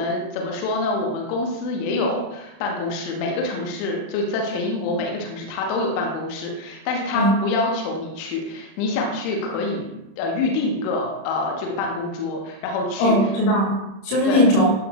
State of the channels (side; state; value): right; late; 31 ms